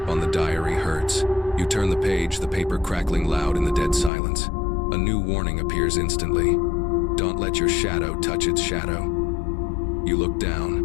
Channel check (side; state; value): right; drops out; at 4.1 s